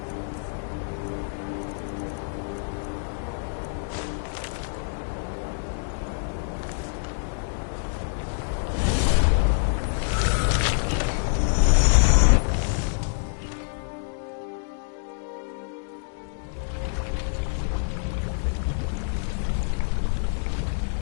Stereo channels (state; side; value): silent; right; digital silence